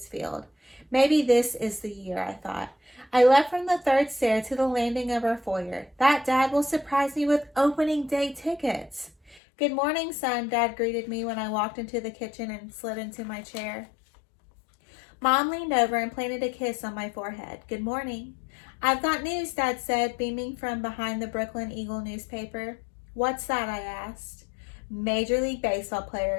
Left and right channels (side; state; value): right; drops out; at 9.4 s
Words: Field. Maybe this is the year, I thought. I left from the third stair to the landing of our foyer. That Dad will surprise me with opening day tickets. Good morning, son, Dad greeted me when I walked into the kitchen and slid into my chair. Mom leaned over and planted a kiss on my forehead. Good morning. I've got news, Dad said, beaming from behind the Brooklyn Eagle newspaper. What's that, I asked. Major League Baseball